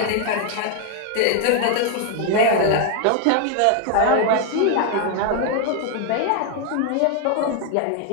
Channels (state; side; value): different; both; correlation 0.00